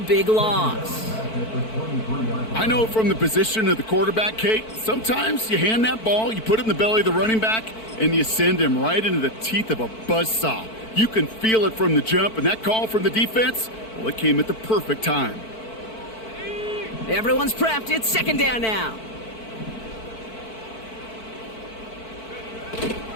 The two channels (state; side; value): late; right; 4.5 ms